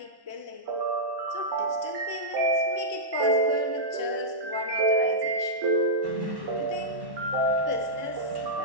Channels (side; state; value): left; late; 1.1 ms